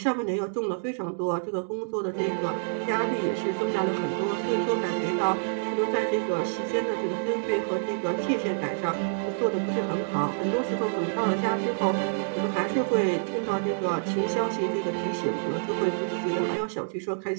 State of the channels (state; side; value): silent; left; digital silence